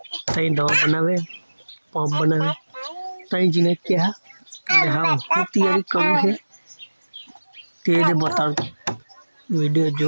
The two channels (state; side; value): inverted; both; correlation -1.00